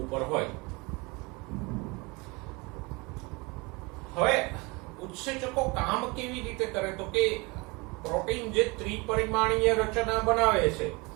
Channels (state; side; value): quieter; left; 26.5 dB